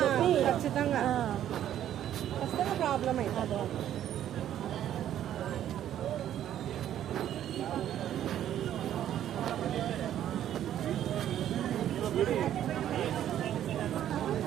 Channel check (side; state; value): left; quieter; 11.2 dB